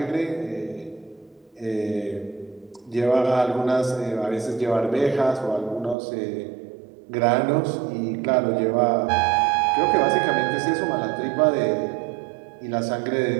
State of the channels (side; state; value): left; drops out; at 6.0 s